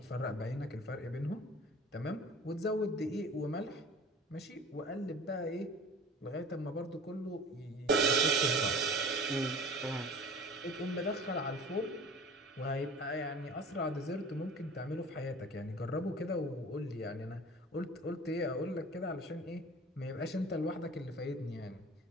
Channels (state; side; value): normal; both; correlation 0.42